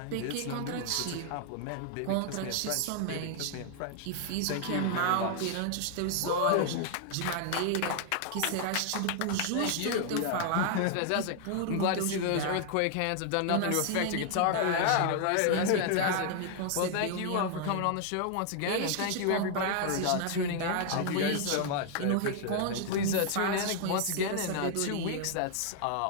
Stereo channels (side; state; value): both; different; correlation 0.00